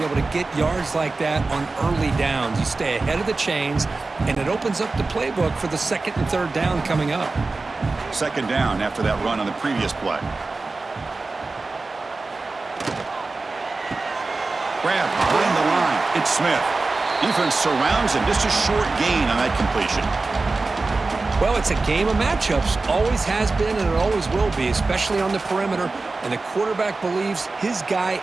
able to get yards like that on early downs. You stay ahead of the chains, and it opens up the playbook for the second and third down coming up. Second down after that run on the previous play. Grab behind the line. It's Smith. Defense surrounds him. Just a short gain on that completion. Well, it's a game of matchups. Always has been, and it always will be, especially on the perimeter. And the quarterback believes his guy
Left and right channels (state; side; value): quieter; left; 3.6 dB